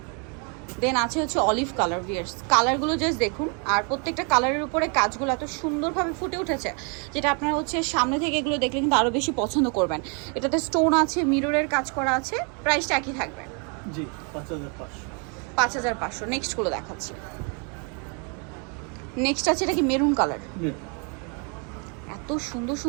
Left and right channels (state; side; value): quieter; left; 36.4 dB